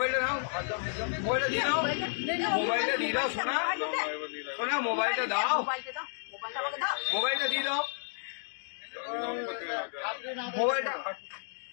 দাও, মোবাইলটা দিয়ে দাও, মোবাইলটা দিয়ে দাও, শোনা শোনা, মোবাইলটা দাও, মোবাইলটা দিয়ে দাও, মোবাইলটা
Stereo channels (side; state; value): right; silent; digital silence